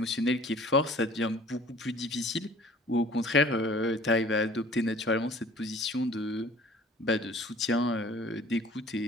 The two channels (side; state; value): both; normal; correlation 0.50